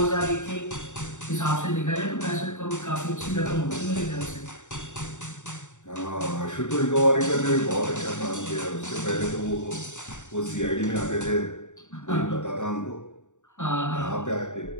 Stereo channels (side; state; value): right; late; 0.85 ms